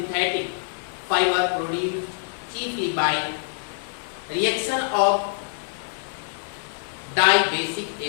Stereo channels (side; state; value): right; silent; digital silence